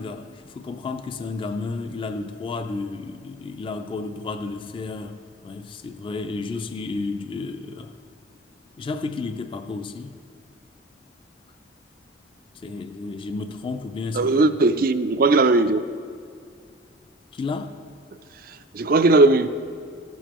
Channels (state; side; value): normal; both; correlation 0.38